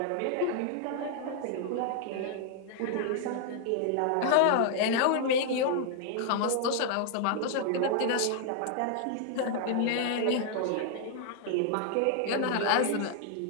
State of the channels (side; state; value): both; different; correlation 0.00